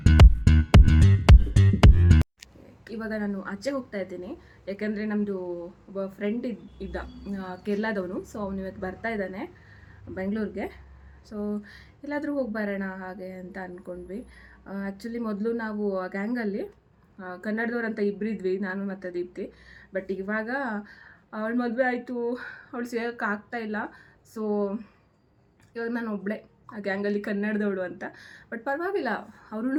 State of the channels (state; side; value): identical; both; correlation 1.00